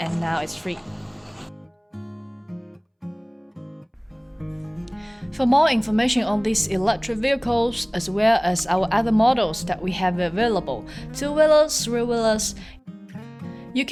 now it's free. For more information on these electric vehicles as well as our other models that we have available, 2-wheelers, 3-wheelers, you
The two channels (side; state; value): both; identical; correlation 1.00